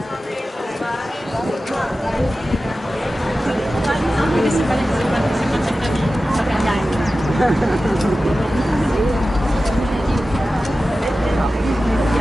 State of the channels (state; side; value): normal; both; correlation 0.94